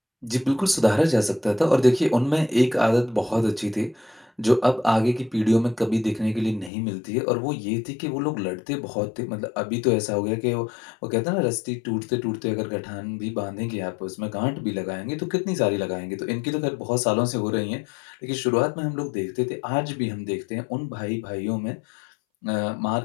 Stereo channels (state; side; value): drops out; right; at 6.7 s